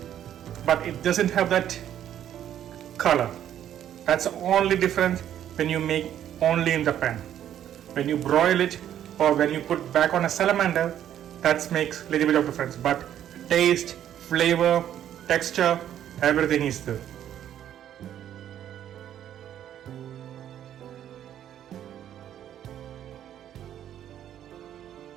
but it doesn't have that color. That's the only difference when you make only in the pan. When you broil it or when you put back on a salamander, that makes a little bit of difference. But taste, flavor, texture, everything is there.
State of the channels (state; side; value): quieter; left; 10.7 dB